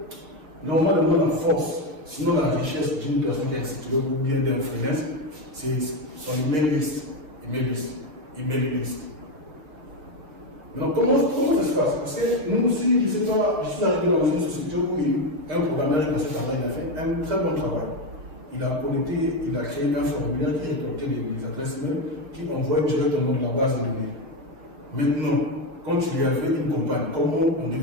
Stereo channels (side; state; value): left; late; 6.4 ms